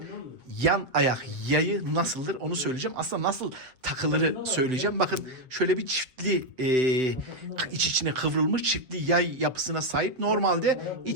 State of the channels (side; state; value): left; late; 7.8 ms